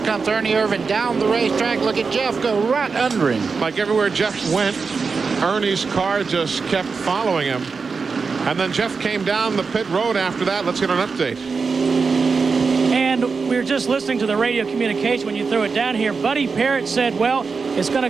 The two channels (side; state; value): left; quieter; 4.9 dB